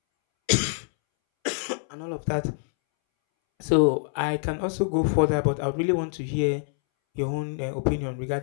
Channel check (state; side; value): silent; right; 61 dB below the other